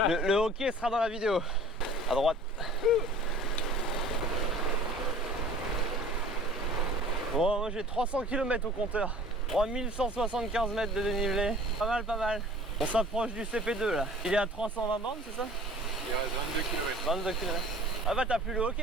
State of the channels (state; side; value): normal; both; correlation 0.47